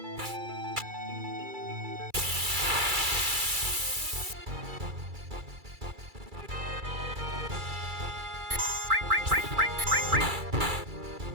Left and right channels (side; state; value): left; late; 2.3 ms